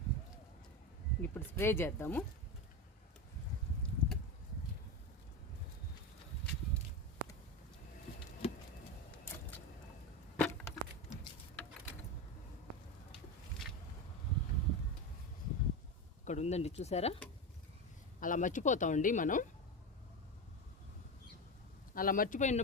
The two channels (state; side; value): normal; both; correlation 0.19